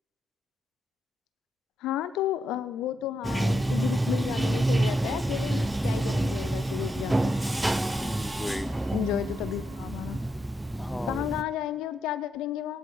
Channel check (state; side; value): normal; both; correlation 0.82